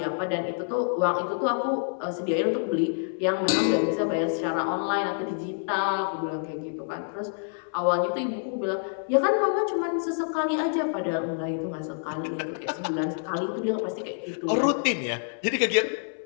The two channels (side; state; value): right; silent; 60 dB below the other